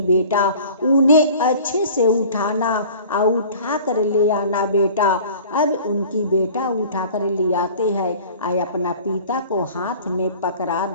बेटा उन्हें अच्छे से उठाना और उठा कर ले आना बेटा। अब उनकी बेटा उठा कर ले आते हैं और अपना पिता को हाथ में पकड़ा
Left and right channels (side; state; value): both; inverted; correlation -0.45